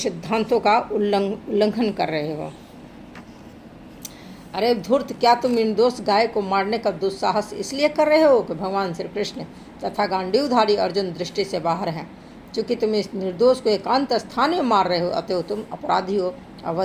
का उल्लंघन कर रहे हो। अरे धूर्त, क्या तुम निर्दोष गाय को मारने का दुस्साहस इसलिए कर रहे हो कि भगवान श्री कृष्ण तथा गांडीवधारी अर्जुन दृष्टि से बाहर हैं? चूँकि तुम इस निर्दोष को एकांत स्थान में मार रहे हो, अतएव तुम अपराधी हो,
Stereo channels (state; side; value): identical; both; correlation 1.00